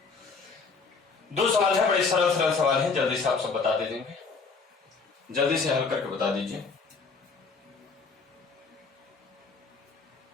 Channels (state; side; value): quieter; right; 4.6 dB